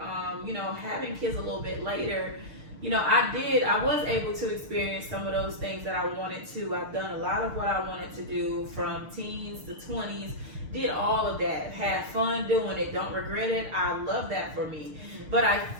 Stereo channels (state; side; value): late; left; 6.5 ms